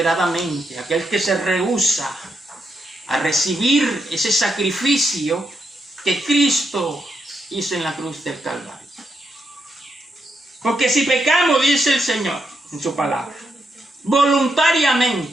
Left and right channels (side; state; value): both; normal; correlation 0.81